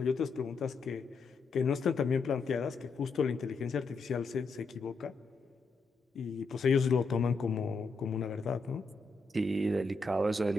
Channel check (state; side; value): quieter; right; 4.0 dB